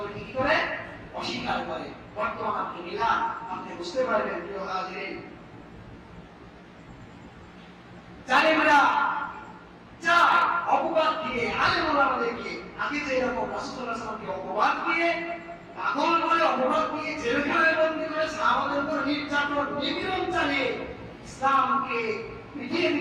কি করে? অস্বীকার করে। বর্তমান আপনি মিলান, আপনি বুঝতে পারবেন প্রিয় হাজিরিন, জালেমরা চায় অপবাদ দিয়ে আলেম ওলামাদেরকে, আগে যে এরকম রাসূল সাল্লাল্লাহু আলাইহি ওয়াসাল্লামকে অপবাদ দিয়ে, পাগল বলে অপবাদ দিয়ে জেলখানায় বন্দী করে সাহাবাদের উপর নির্যাতন নিপীড়ন চালিয়ে ইসলামকে পিটিয়ে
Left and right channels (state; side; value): identical; both; correlation 1.00